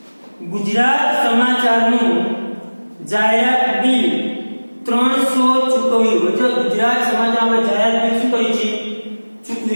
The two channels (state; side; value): inverted; both; correlation -1.00